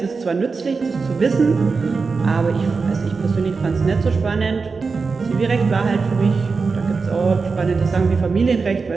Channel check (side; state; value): left; quieter; 4.6 dB